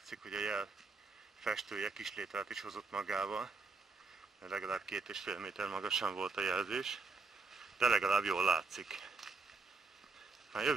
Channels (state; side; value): quieter; left; 4.1 dB